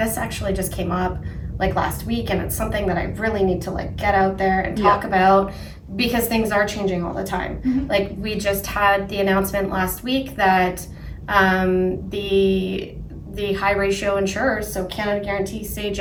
actually just came up like last week, and it's something that I really need to like get out there and talk about, because things are changing all the time. Like we just had the announcement last week that the high ratio insurers, so Canada Guarantee,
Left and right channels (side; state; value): both; identical; correlation 1.00